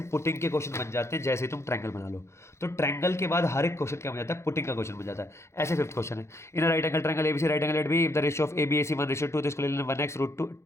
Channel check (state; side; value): late; right; 0.13 ms